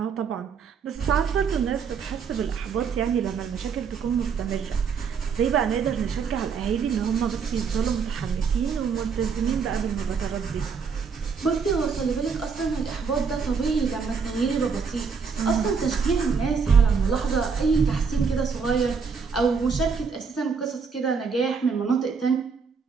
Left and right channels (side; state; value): left; quieter; 5.7 dB